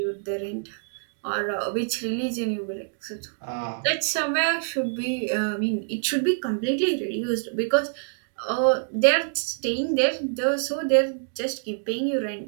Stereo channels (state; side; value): silent; left; digital silence